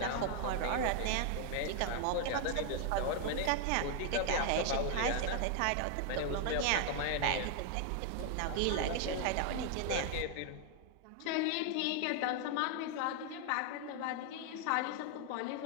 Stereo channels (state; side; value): different; both; correlation 0.00